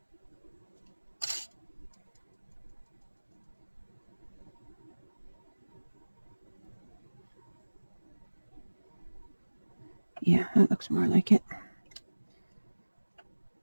Yeah, that looks more like it.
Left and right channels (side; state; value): both; inverted; correlation -1.00